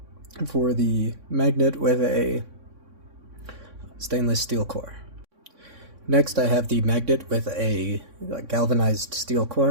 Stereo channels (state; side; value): late; left; 3.6 ms